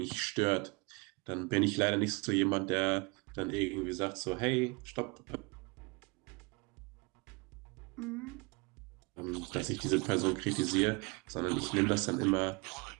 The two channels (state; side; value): quieter; left; 28.7 dB